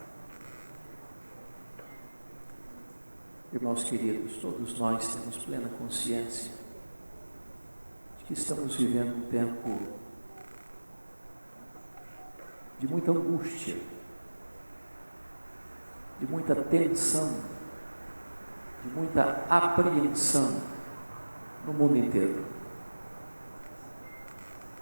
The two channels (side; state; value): both; inverted; correlation -1.00